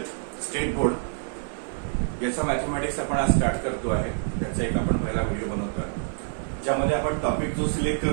स्टेट बोर्ड याचा मॅथमॅटिक्स आपण आज स्टार्ट करतो आहे। त्याचा एक आपण पहिला व्हिडिओ बनवतो आहे, ज्यामध्ये आपण टॉपिक जो सिलेक्ट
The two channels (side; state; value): left; silent; 60 dB below the other